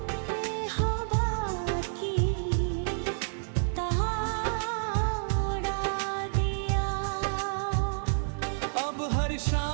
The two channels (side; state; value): left; silent; digital silence